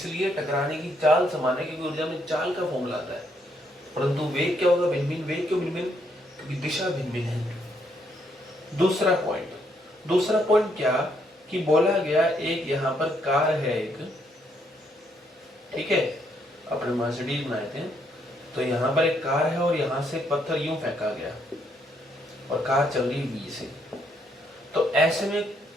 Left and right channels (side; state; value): both; normal; correlation 0.73